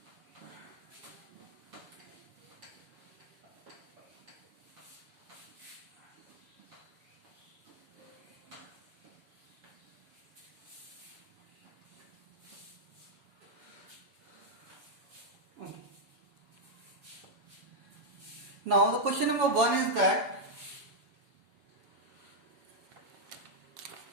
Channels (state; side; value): late; left; 7.2 ms